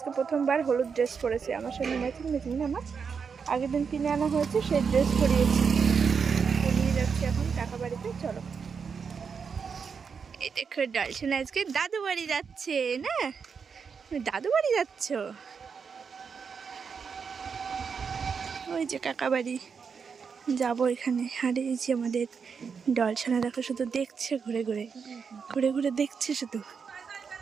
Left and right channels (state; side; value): quieter; left; 6.0 dB